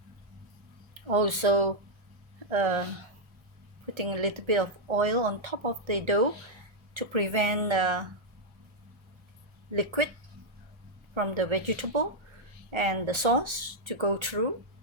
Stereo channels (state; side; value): late; left; 1.3 ms